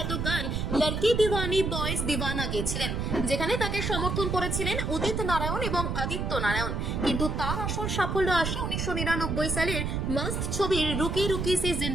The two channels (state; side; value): noise; right; rumble, 1 dB below the sound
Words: গান লড়কি দিওয়ানি বয়েজ দিওয়ানা গেয়েছিলেন, যেখানে তাকে সমর্থন করেছিলেন উদিত নারায়ণ এবং আদিত্য নারায়ণ। কিন্তু তার আসল সাফল্য আসে 1999 সালের মাস্ট ছবির রুকি রুকি সি